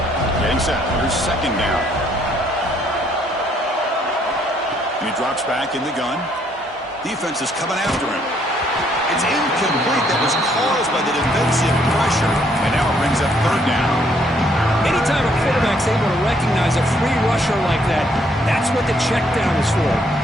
Getting set. Here's 2nd down. And he drops back in the gun. Defense is coming after him. It's incomplete. That was caused by the defensive pressure. And now it brings up 3rd down. Anytime a quarterback's able to recognize a free rusher like that, that's what the check down is for.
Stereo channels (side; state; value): both; normal; correlation 0.68